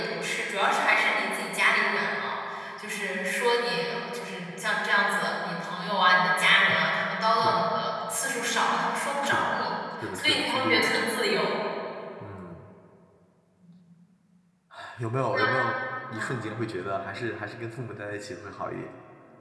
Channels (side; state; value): both; identical; correlation 1.00